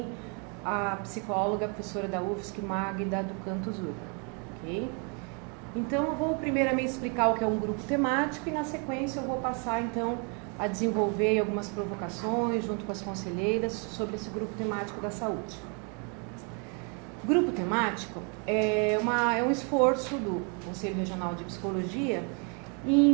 a psicóloga, a professora da UFSC, Magda do Canto Zurba, ok? Então, eu vou primeiramente explicar o que é um grupo temático e, na sequência, eu vou passar, então, a desenvolver algumas provocações junto com as conselheiras sobre esse grupo temático da saúde. O grupo temático é um esforço do Conselho Regional de Psicologia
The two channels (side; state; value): left; quieter; 36.2 dB